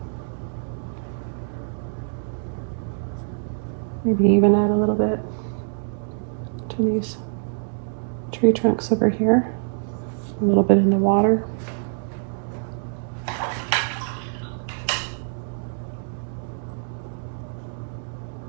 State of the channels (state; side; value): silent; left; digital silence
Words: Maybe even add a little bit to these tree trunks over here. A little bit in the water.